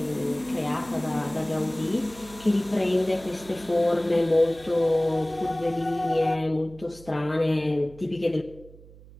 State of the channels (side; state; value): right; noise; hum, 21 dB below the sound